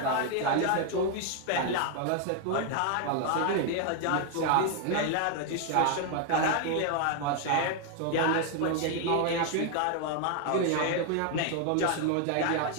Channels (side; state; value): both; different; correlation 0.00